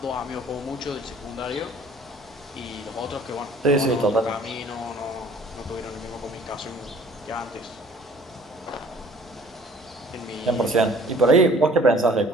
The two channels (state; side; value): normal; both; correlation 0.53